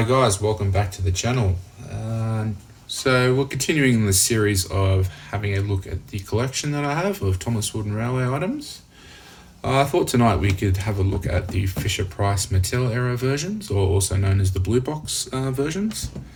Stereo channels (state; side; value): identical; both; correlation 1.00